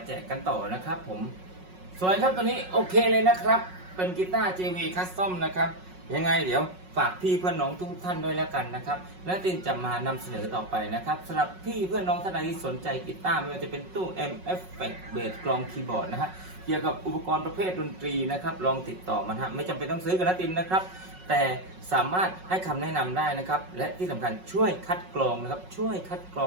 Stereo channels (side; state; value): left; late; 5.4 ms